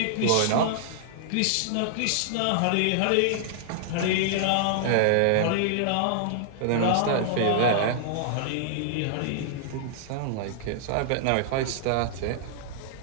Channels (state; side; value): different; both; correlation -0.01